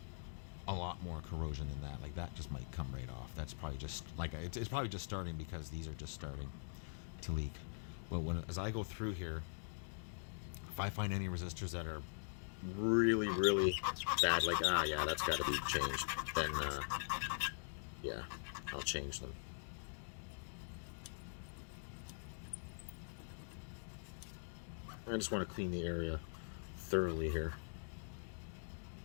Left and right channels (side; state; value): right; silent; digital silence